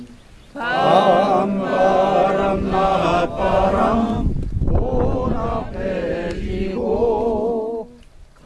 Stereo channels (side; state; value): both; identical; correlation 1.00